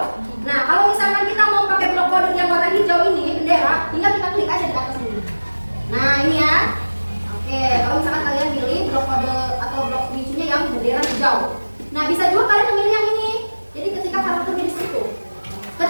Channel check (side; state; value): both; inverted; correlation -1.00